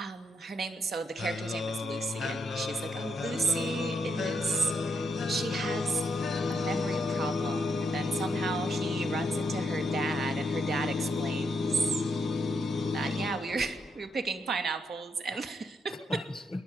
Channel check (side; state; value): both; normal; correlation 0.78